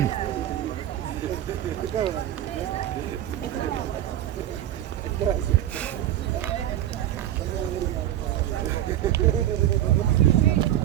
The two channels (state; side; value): quieter; left; 12.3 dB